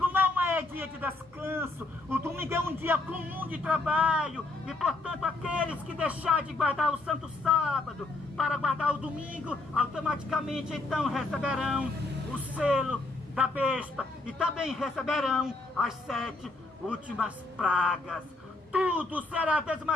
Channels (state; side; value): quieter; right; 3.1 dB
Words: não é dia de descanso. O domingo é um dia comum de trabalho. E, portanto, aqueles que deixarem de guardar o santo sábado para guardar o domingo, automaticamente então receberão o selo da besta e também receberão as 7 últimas pragas. Tudo será